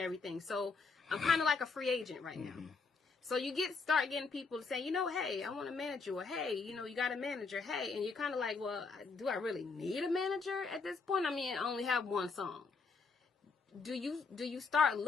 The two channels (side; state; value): right; quieter; 4.5 dB